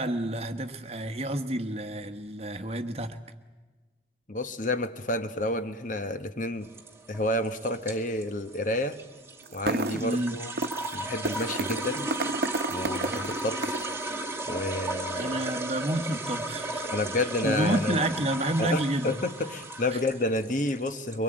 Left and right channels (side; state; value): both; normal; correlation 0.39